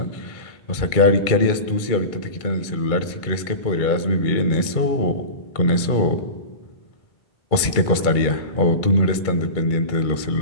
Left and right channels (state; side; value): late; right; 2.2 ms